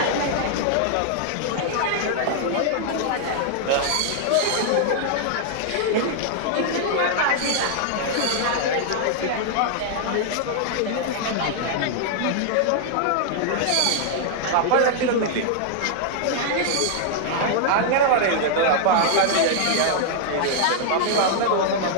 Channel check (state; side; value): different; both; correlation -0.01